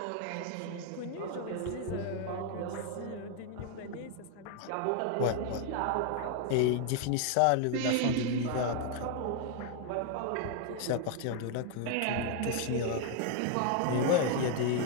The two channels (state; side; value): different; both; correlation 0.00